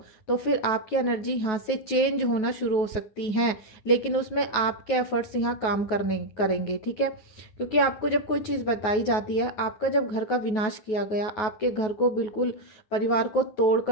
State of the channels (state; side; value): late; right; 9.3 ms